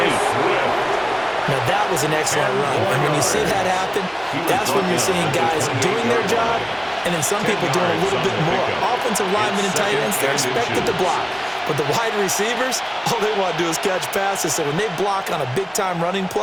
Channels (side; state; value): both; identical; correlation 1.00